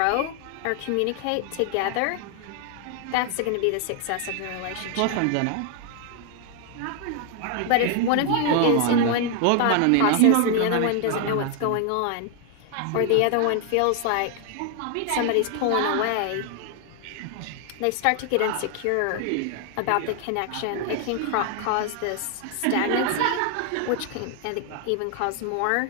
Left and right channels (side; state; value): both; different; correlation 0.00